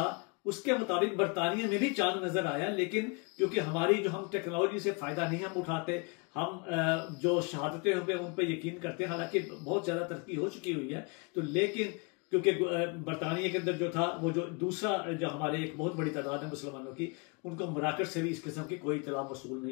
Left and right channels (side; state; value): right; quieter; 32.0 dB